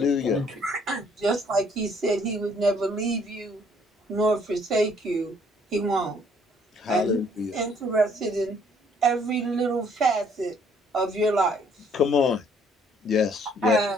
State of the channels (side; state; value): both; normal; correlation 0.63